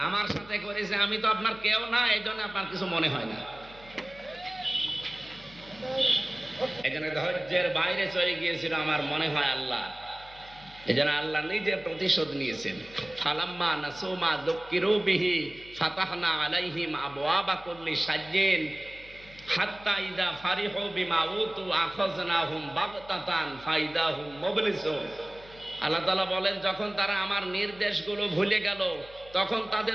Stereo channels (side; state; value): left; noise; hum, 22 dB below the sound